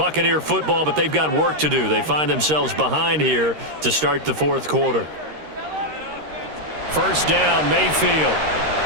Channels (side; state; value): left; late; 13 ms